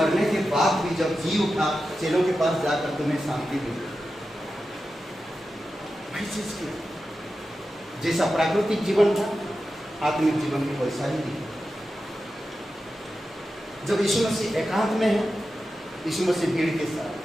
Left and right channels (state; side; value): normal; both; correlation 0.91